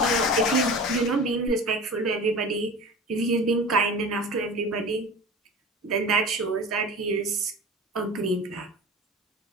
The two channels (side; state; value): both; normal; correlation 0.34